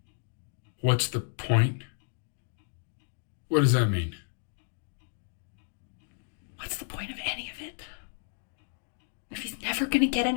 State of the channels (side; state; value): right; silent; digital silence